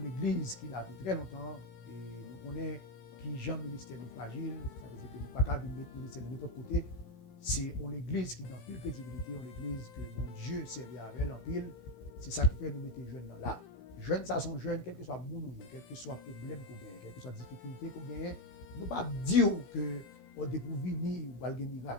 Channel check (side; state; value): right; late; 16 ms